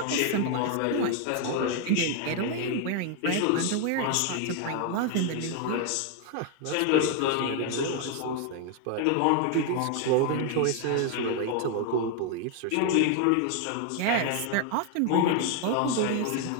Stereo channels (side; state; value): both; different; correlation 0.01